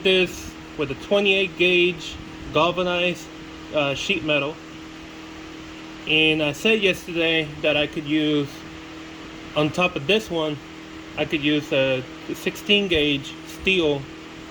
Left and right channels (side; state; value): both; identical; correlation 1.00